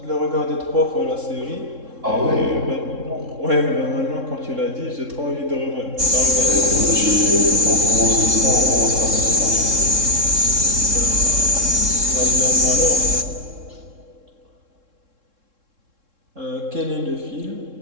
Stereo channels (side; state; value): left; late; 3.7 ms